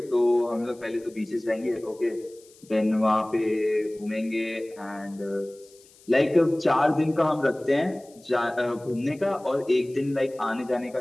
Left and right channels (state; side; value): noise; left; hiss, 27 dB below the sound